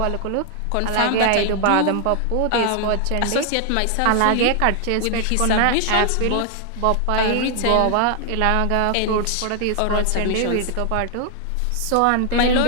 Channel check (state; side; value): different; both; correlation 0.00